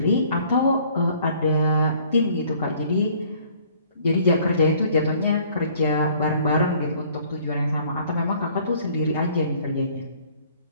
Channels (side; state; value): both; inverted; correlation -0.57